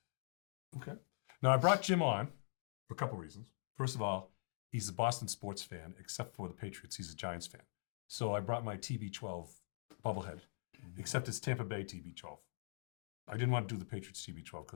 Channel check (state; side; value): silent; right; digital silence